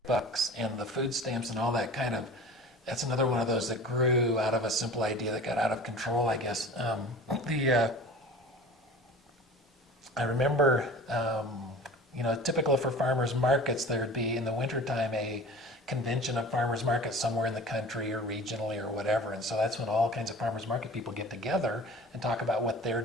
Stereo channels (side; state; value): both; normal; correlation 0.40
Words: bucks and the food stamps and all that that's another one of those that grew out of a simple idea that got out of control, I guess. I remember, typical for farmers markets, there would be in the wintertime a convention of farmers markets somewhere in the country or regionally or whatever, and so that's when all kinds of farmers market people get together and talk about what